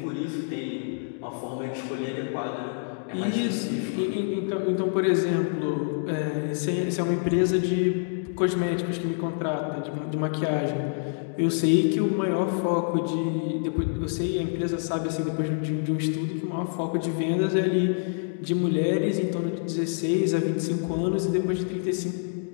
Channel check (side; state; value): right; silent; digital silence